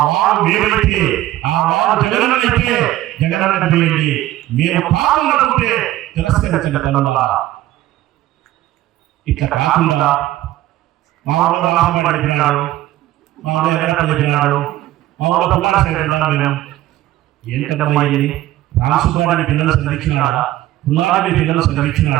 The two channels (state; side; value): quieter; left; 15.0 dB